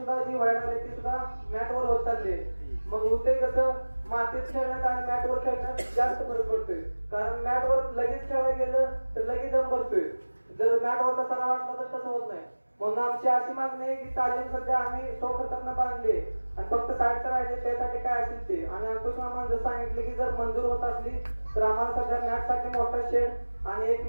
जी व्हायला लागली ती सुद्धा मॅटवर होत चालली. मग होते कसं, मातीत खेळण्यात आणि मॅटवर खेळण्यात जास्त फरक पडतोय. कारण मॅटवर लगेच खेळायला गेलं तर लगेच दम भरतोय, जर मॅटवर तसा वाटला तर तसं होत नाही. म्हणून आमची अशी मागणी आहे की तालीम सध्या आम्ही स्वखर्चाने बांधली आणि फक्त साईडचं राहिले त्यासाठी काय असेल ते. आणि अंकुश मामानं जर सांगितले की जर मंजूर होत असली तर आम्हाला सध्या मॅटसाठी मोठा शेड आणि एक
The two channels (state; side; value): inverted; both; correlation -1.00